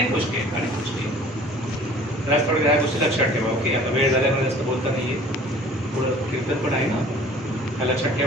गोष्टी आहेत. तर आज थोड्या ह्या गोष्टी लक्षात ठेवा. ओके, आता वेळ झाल्यामुळे जास्त बोलता नाहीये. पुढं कीर्तन पण आहे ना, त्या लक्षात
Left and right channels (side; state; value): both; normal; correlation 0.49